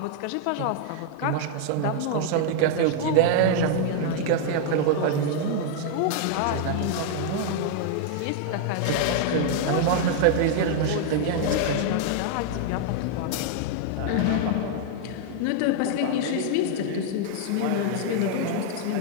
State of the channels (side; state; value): both; different; correlation 0.00